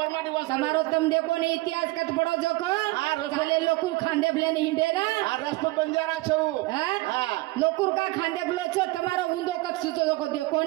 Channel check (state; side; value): quieter; left; 20.7 dB